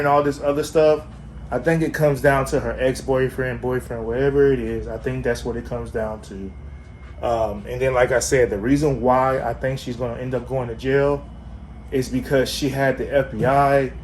all this other stuff, I think it comes down to her ex-boyfriend, boyfriend, whatever it is. I think that's what it comes down to. And then, like I said, the reason why I think she's going to end up going to jail is because she had the FBI,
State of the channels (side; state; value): both; identical; correlation 1.00